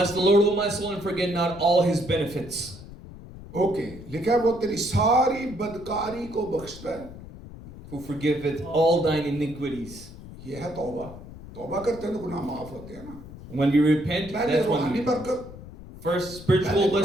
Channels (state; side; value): noise; left; rumble, 15 dB below the sound